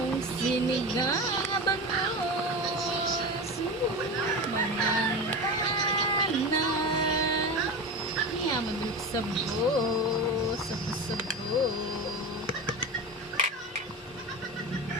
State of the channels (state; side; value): normal; both; correlation 0.26